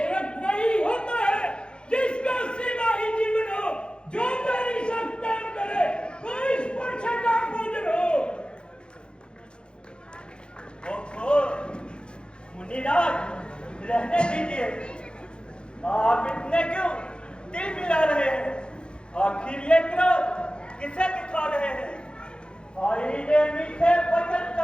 वही होता है जिसका सेवा ही जीवन हो। जो मेरी सत्ता करे वो इस पर्चा का भोजन हो। ओहो मुनिराज, रहने दीजिए। आप इतने क्यों दिल मिला रहे हैं? आखिर ये क्रोध किसे दिखा रहे हैं? भाई ने मीठे वचन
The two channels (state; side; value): late; right; 0.052 ms